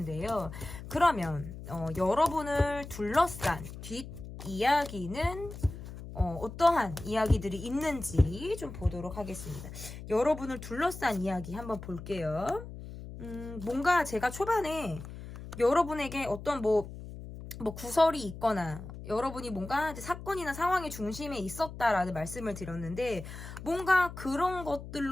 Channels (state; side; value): noise; left; hum, 12 dB below the sound